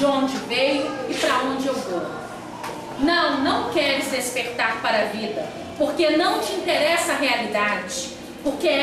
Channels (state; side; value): identical; both; correlation 1.00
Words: onde veio e para onde eu vou. Não queres despertar para a vida, porque não te interessa a realidade, porque